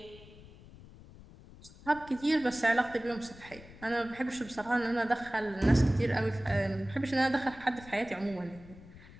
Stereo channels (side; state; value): left; noise; rumble, 19 dB below the sound